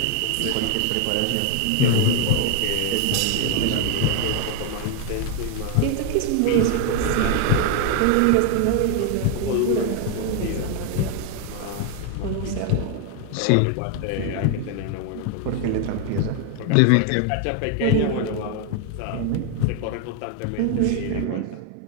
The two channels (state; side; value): different; both; correlation 0.01